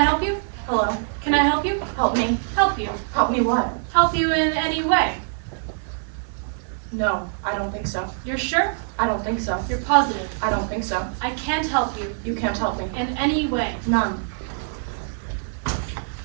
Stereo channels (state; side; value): silent; left; 59 dB below the other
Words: you? Hello. Can I help you? Help me. Help you. Help me what? Help you in any way. No, I don't think so. You're sure? I don't think so. You're positive. I don't think so. I can't help you You can't help me. in any way. None.